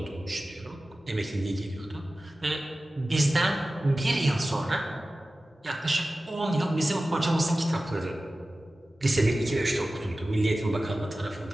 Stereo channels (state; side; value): normal; both; correlation 0.95